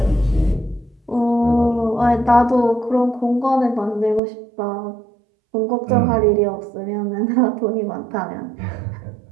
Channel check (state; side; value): drops out; left; at 4.2 s